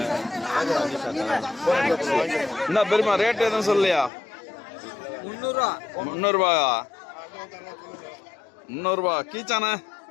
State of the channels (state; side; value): drops out; right; at 4.1 s